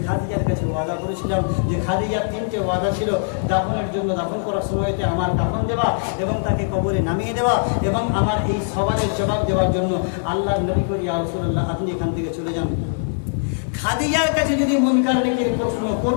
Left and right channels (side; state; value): right; silent; digital silence